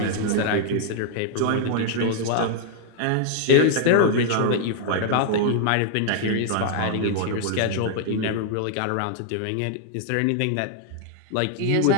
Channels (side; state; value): both; different; correlation 0.00